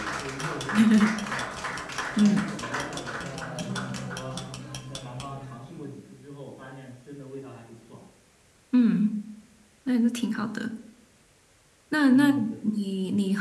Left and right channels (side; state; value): both; identical; correlation 1.00